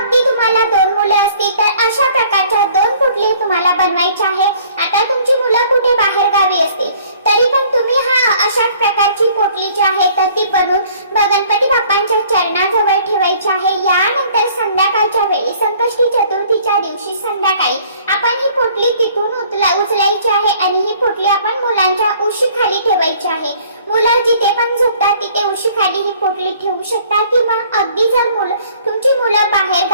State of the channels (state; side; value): inverted; both; correlation -0.56